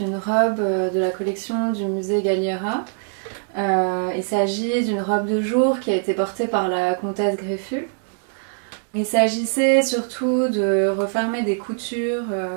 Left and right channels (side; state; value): left; silent; digital silence